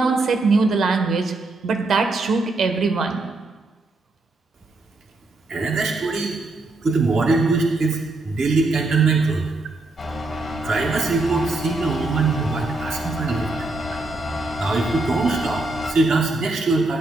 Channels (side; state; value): left; quieter; 3.1 dB